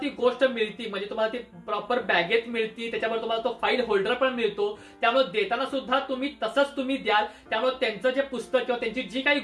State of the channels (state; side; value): identical; both; correlation 1.00